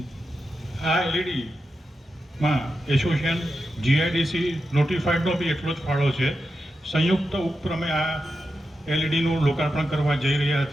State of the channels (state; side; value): normal; both; correlation 0.89